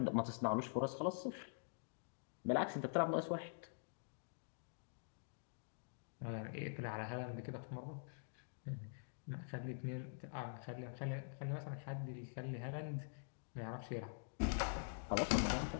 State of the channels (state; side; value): silent; right; digital silence